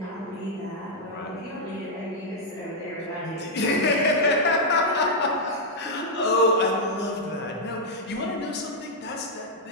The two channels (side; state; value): both; normal; correlation -0.04